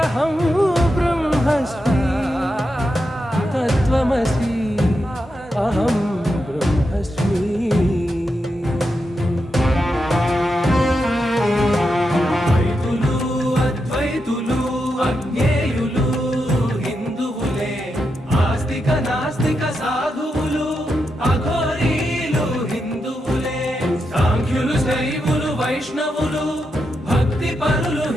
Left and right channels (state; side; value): normal; both; correlation 0.86